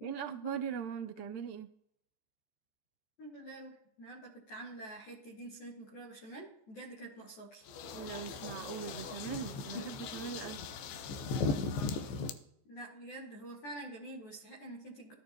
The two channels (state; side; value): late; right; 15 ms